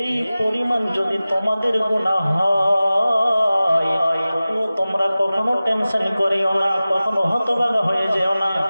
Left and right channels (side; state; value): both; inverted; correlation -0.96